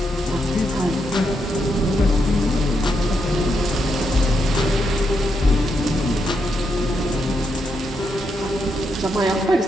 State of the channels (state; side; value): normal; both; correlation 0.81